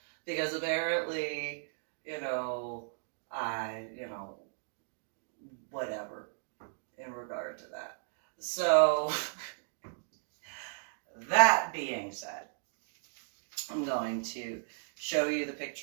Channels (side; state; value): left; silent; digital silence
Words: Because apparently, you know, whatever in regard to that. So, that being said, I'm going to show you the